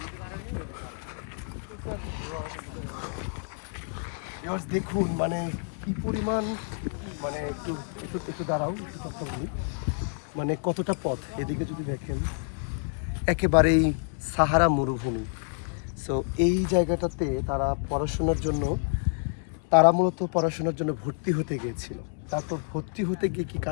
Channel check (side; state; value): right; silent; 59 dB below the other